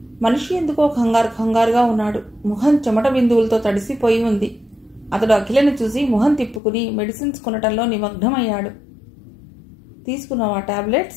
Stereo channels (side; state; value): right; drops out; at 6.6 s